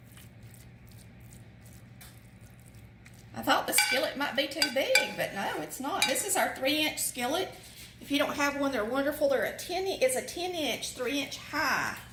I thought the skillet might be too big, but no, it's not. This is our 3-inch skillet. If you don't have one, they're wonderful. It's a 10-inch, 3-inch high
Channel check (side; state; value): both; identical; correlation 1.00